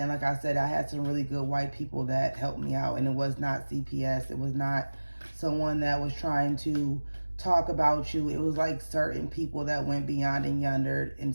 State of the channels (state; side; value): inverted; both; correlation -1.00